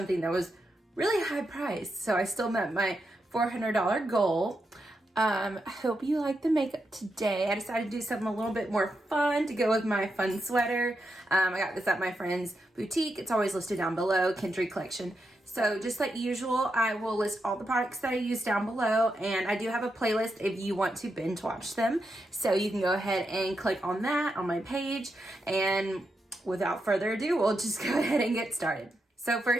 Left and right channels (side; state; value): both; normal; correlation 0.85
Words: that was really high priced, so I still met my $400 goal. I hope you like the makeup today. I decided to do something a little bit more fun to go with my fun sweater. I got this at my friend's boutique. It's always listed down below, Kindred Collection. So just like usual, I will list all the products that I use down below, and I do have a playlist if you want to binge watch them. So you can go ahead and click on that on my page, and without further ado, we'll just go ahead and get started. So